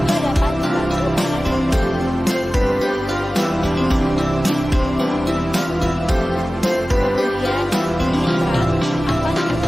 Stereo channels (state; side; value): normal; both; correlation 0.96